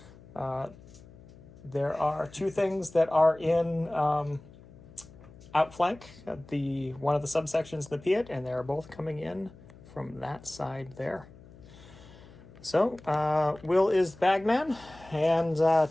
there are two things that are in outflank, one of the subsections, the Piat, and they're both coming in from that side there. So, Will is the bagman, and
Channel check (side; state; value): left; noise; hum, 21 dB below the sound